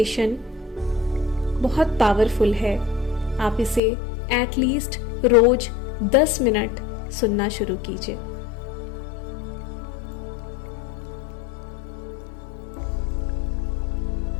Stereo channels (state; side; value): drops out; right; at 3.8 s